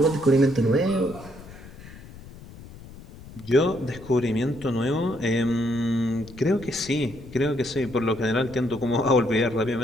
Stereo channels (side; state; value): left; noise; rumble, 17 dB below the sound